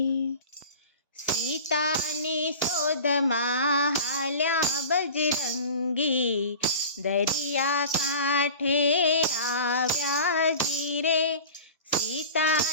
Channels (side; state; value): both; inverted; correlation -0.38